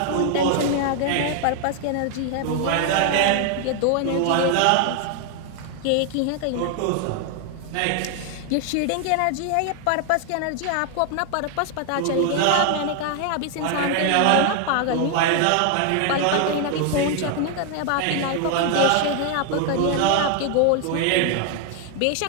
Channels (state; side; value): different; both; correlation 0.00